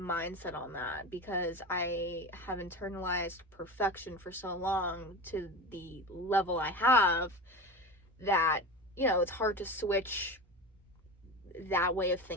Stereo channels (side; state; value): both; normal; correlation 0.28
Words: on that, because I have internalized perfection for so long to the level I have that, it's hard to switch that way of